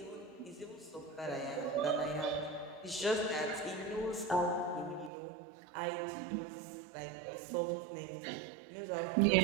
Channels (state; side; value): drops out; left; at 5.1 s